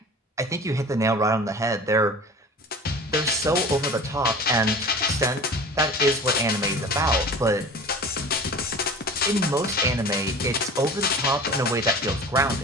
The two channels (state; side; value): normal; both; correlation 0.38